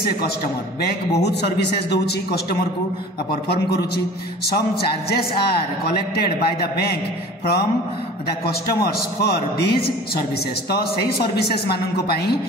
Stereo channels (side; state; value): both; normal; correlation 0.42